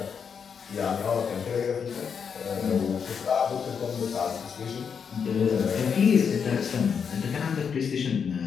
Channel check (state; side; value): quieter; right; 6.7 dB